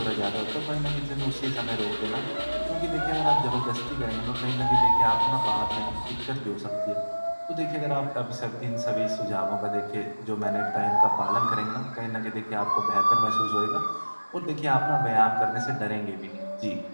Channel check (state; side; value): inverted; both; correlation -1.00